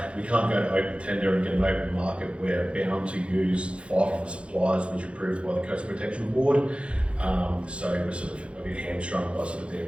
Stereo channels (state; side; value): late; left; 0.060 ms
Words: can't go to open tender and get an open market. We're bound to use 5 of the suppliers which are approved by the Coastal Protection Board. So we're sort of a bit hamstrung by sort of